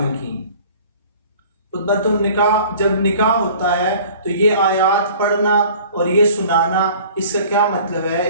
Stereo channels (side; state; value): both; inverted; correlation -0.48